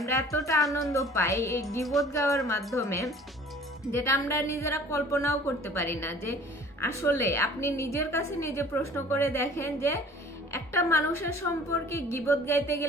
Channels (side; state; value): both; normal; correlation 0.49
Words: এতটা আনন্দ পাই এই গীবত গাওয়ার মাধ্যমে, যেটা আমরা নিজেরা কল্পনাও করতে পারি না। যে আসলে আপনি নিজের কাছে নিজে প্রশ্ন করে দেখেন যে একটা মানুষের সম্পর্কে গীবত গাইতে